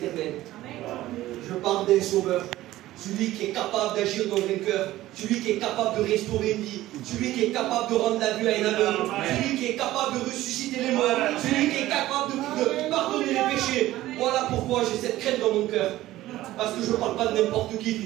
Je parle d'un sauveur. Celui qui est capable d'agir dans un cœur. Celui qui est capable de restaurer une vie. Celui qui est capable de rendre la vue à un aveugle. Celui qui est capable de ressusciter les morts. Celui qui est capable de pardonner les péchés. Voilà pourquoi j'ai cette crainte dans mon cœur. Parce que je ne parle pas de n'importe qui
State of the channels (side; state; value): left; quieter; 15.6 dB